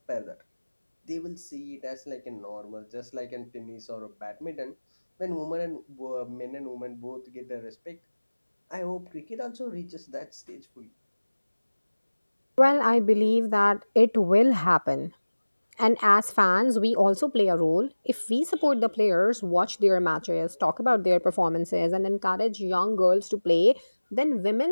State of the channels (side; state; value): both; inverted; correlation -1.00